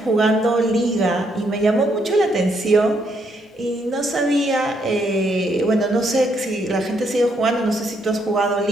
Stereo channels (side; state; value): both; normal; correlation 0.74